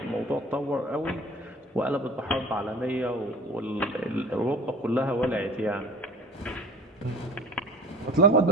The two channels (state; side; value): normal; both; correlation 0.42